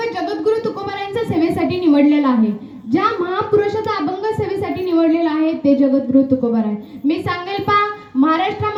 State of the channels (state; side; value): identical; both; correlation 1.00